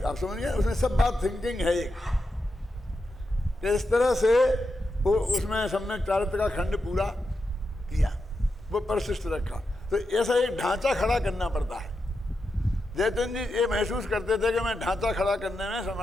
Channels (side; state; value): both; normal; correlation 0.87